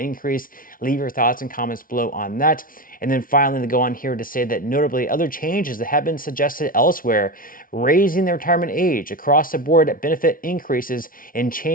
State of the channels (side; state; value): right; late; 0.41 ms